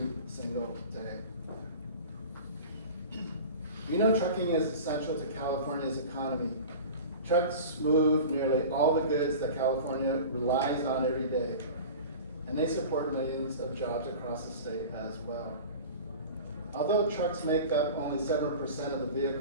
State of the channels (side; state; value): both; inverted; correlation -0.36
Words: single day. We know trucking is essential to California's economy. Trucks move nearly all the goods that California relies on every day, and they support millions of jobs across the state as well. Although trucks make up only 7% of the